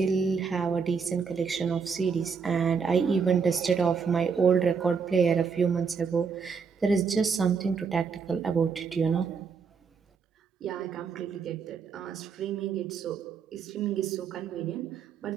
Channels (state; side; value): quieter; left; 5.8 dB